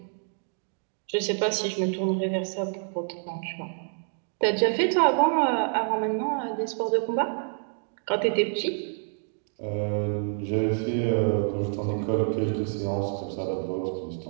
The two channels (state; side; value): silent; left; 60 dB below the other